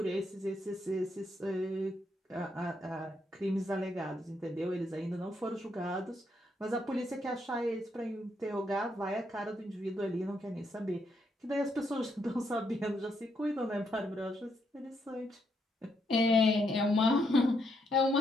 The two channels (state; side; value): normal; both; correlation 0.77